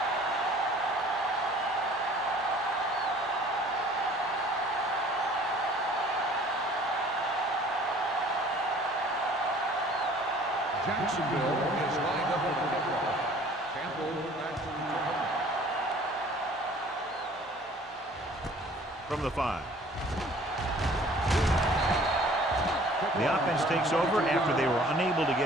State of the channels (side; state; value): both; normal; correlation 0.52